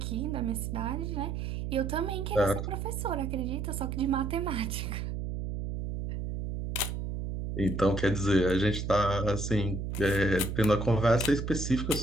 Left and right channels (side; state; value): right; noise; hum, 4 dB below the sound